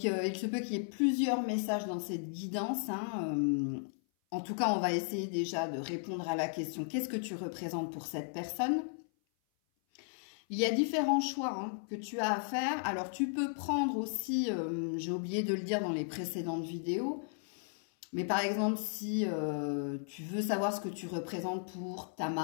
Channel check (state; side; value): silent; right; 54 dB below the other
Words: il se peut qu'il y ait plusieurs messages dans cette guidance, en tout cas, on va essayer déjà de répondre à la question « Qu'est-ce que tu représentes pour cette personne ?» Il y a différents choix que tu as à faire. Alors, tu peux prendre aussi, j'ai oublié de le dire dans les précédentes vidéos, mais par exemple, si tu veux savoir ce que tu représentes pour ta